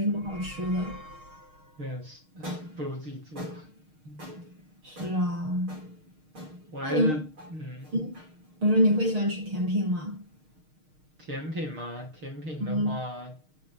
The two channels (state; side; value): late; left; 6.5 ms